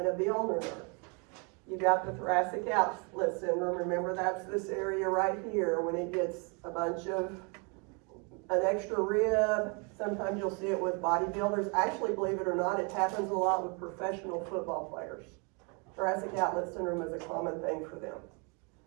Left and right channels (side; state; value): left; quieter; 33.6 dB